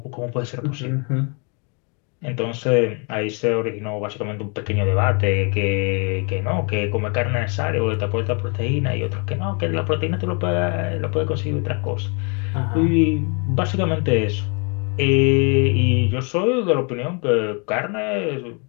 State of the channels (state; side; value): quieter; right; 35.2 dB